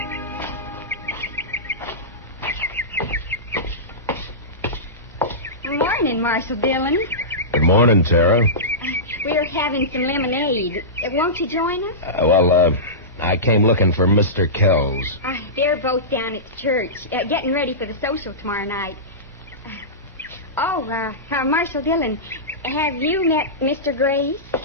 Morning, Marshal Dillon. Good morning, Tara. We're having some lemonade. Won't you join us? I came looking for Mr. Kells. They're both down at the church, getting ready for the social tomorrow night. Marshal Dillon, have you met Mr. Grace?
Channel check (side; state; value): both; normal; correlation -0.19